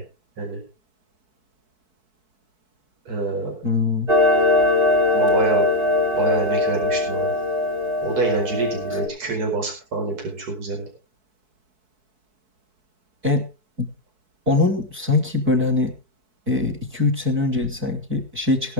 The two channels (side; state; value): left; late; 4.6 ms